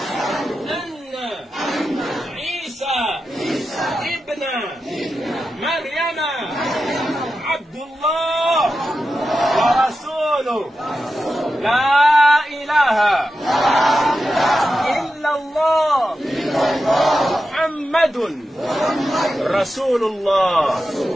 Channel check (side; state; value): both; normal; correlation 0.90